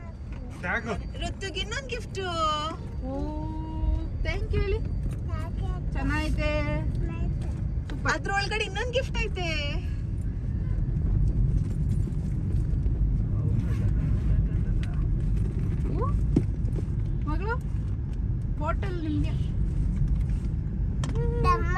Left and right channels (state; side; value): identical; both; correlation 1.00